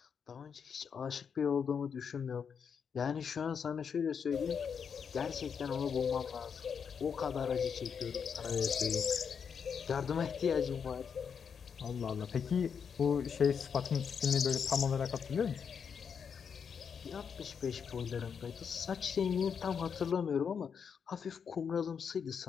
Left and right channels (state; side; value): quieter; right; 6.8 dB